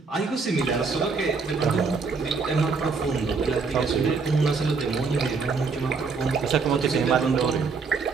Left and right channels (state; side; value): quieter; left; 4.7 dB